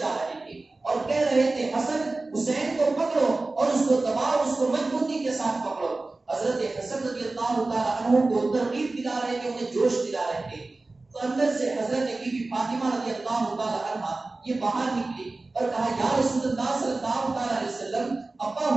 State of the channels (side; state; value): left; quieter; 3.2 dB